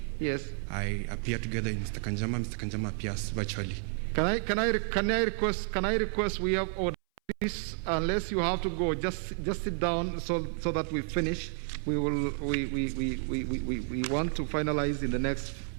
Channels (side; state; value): left; silent; 57 dB below the other